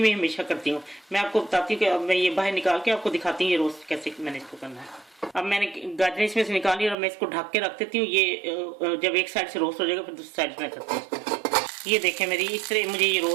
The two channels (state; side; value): drops out; left; at 7.0 s